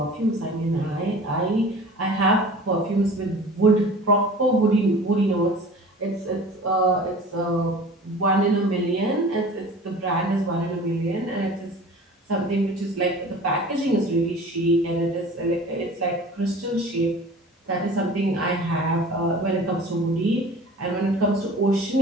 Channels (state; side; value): normal; both; correlation 0.42